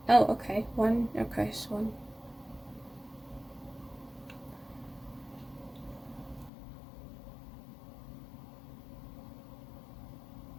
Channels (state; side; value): drops out; right; at 6.5 s